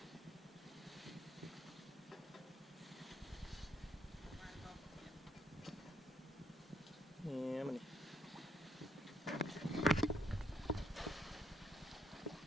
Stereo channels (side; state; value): both; normal; correlation 0.73